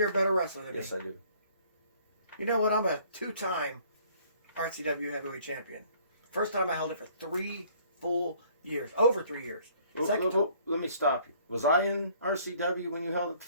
a better wrestler than Yes, me? I do. You know what? I'm a two-time RCW heavyweight champion. First time I held it for 3 full years. Over 3 years. Second time. Let me stop you. Was I in RCW when you held it the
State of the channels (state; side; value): inverted; both; correlation -0.58